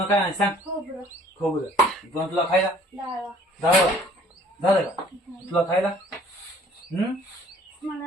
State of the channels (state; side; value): normal; both; correlation 0.56